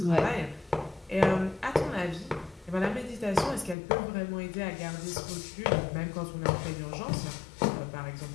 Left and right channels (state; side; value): drops out; right; at 3.8 s